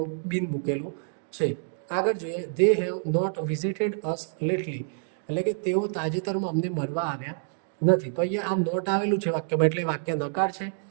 બીન મૂકેલું છે. આગળ જોઈએ, they have not visited us lately, એટલે કે તેઓ તાજેતરમાં અમને મળવા આવ્યા નથી. તો અહીંયા આ નોટ આવેલું છે વાક્યમાં, એટલે વાક્ય નકાર છે.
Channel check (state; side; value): silent; left; digital silence